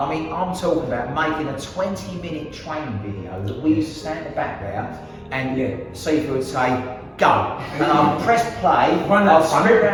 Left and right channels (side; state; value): both; identical; correlation 1.00